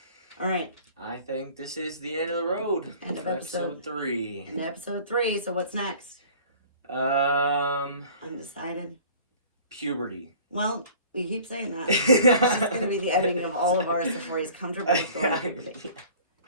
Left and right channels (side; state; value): both; inverted; correlation -0.47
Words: All right. I think this is the end of the road. End of episode 3. And episode 3. So what's next? Undecided. Puberty. Well, we keep saying that. It's going to be the ending of all of ours before he's comfortable with going.